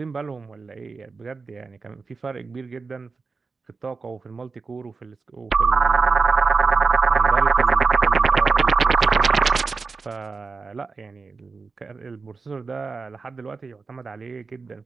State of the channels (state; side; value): quieter; left; 4.4 dB